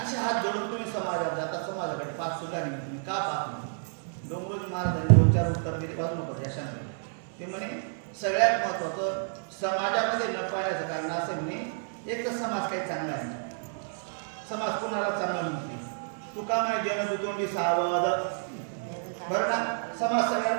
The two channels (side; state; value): left; silent; 58 dB below the other